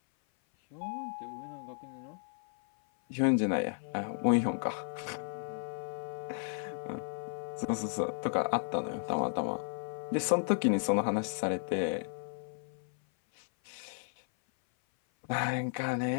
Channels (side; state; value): right; silent; 55 dB below the other